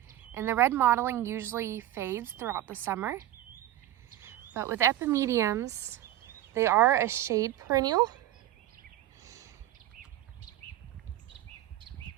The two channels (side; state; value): left; quieter; 13.5 dB